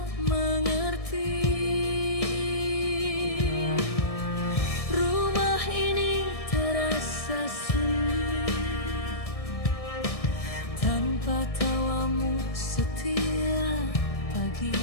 mengerti. Rumah ini terasa sunyi tanpa tawamu setiap pagi.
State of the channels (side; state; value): right; late; 1.6 ms